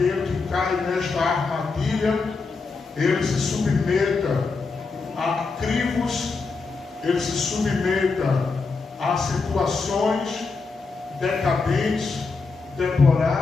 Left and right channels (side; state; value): right; quieter; 4.3 dB